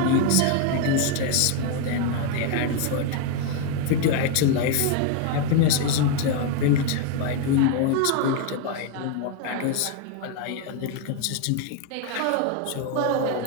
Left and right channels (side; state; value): both; different; correlation 0.01